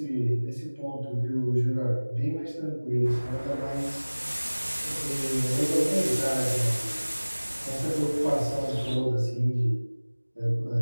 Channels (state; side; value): inverted; both; correlation -1.00